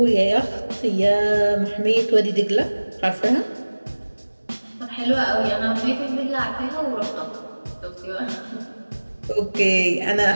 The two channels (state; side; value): inverted; both; correlation -1.00